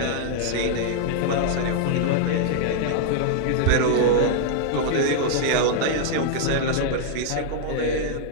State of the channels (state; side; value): different; both; correlation -0.01